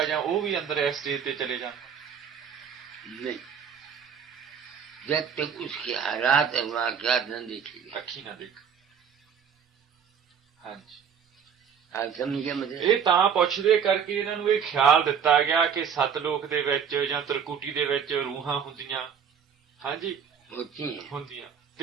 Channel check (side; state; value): left; quieter; 7.4 dB